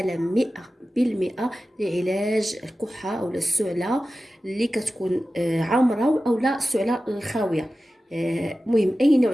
100% لعلاج الكحة أو السعلة اللي كتكون عامرة أو لا السعلة الخاوية. مهم أي نوع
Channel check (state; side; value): normal; both; correlation 0.94